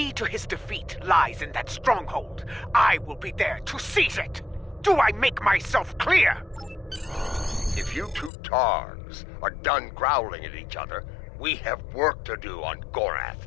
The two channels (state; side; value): drops out; right; at 8.3 s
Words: to his defeat lies in that stronghold, I will be there to seize it. Do I make myself clear? If you two Targs are done growling at each other, we have work to do on Gorath.